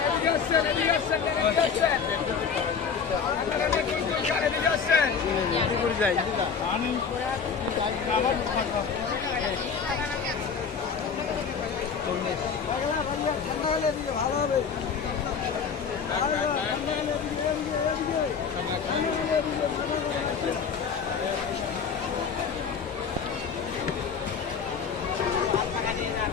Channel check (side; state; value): right; quieter; 6.2 dB